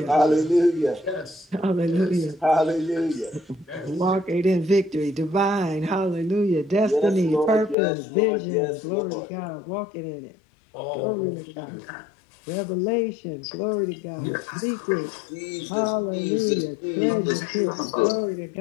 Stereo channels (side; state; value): right; drops out; at 7.8 s